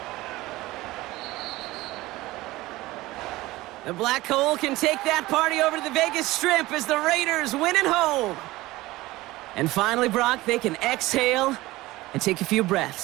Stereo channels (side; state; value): left; quieter; 18.7 dB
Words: The Black Hole can take that party over to the Vegas Strip as the Raiders win at home. And finally, Brock, they can exhale and take a few